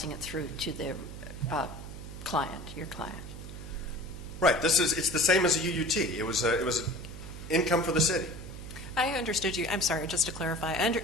it through to the client, your client. Right. It's the same as a UUT. It was income for the city. I understood you. I'm sorry, just to clarify.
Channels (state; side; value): noise; right; hum, 11 dB below the sound